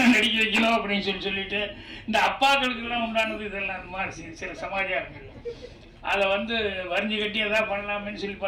நடிக்க வைக்கணும் அப்படின்னு சொல்லிட்டு இந்த அப்பாக்களுக்கெல்லாம் உண்டானது இதெல்லாம் அந்த மாதிரி சில சமாச்சாரங்கள் அதை வந்து வரிஞ்சு கட்டி எதாவது பண்ணலாமேன்னு சொல்லி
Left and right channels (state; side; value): identical; both; correlation 1.00